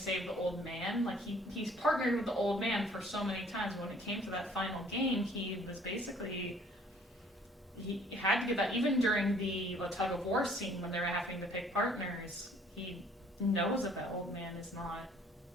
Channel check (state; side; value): normal; both; correlation 0.57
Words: the old man. He's partnered with the old man for so many times. When it came to that final game, he was basically, he had to give that, even during the tug of war scene when they were having to pick partners, he knows that old man is not